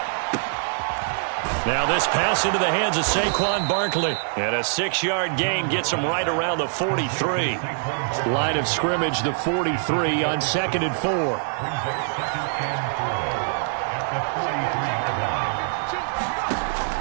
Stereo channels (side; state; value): left; silent; 63 dB below the other